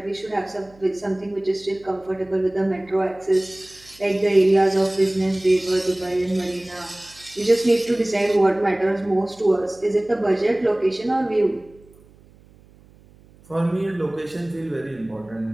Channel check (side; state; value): right; noise; hum, 27 dB below the sound